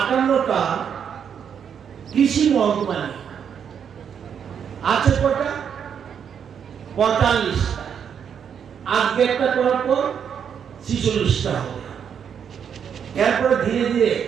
কৃষি মহকুমা আছে কটা 45টা আজকে একটা করার পর 46টা হবে এরপরে ধীরে ধীরে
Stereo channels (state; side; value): quieter; left; 7.8 dB